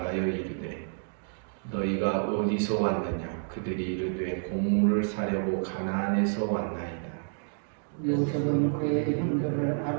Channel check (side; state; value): left; silent; digital silence